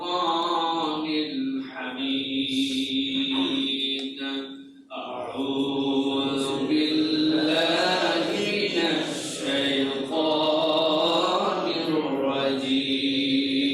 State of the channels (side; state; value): both; identical; correlation 1.00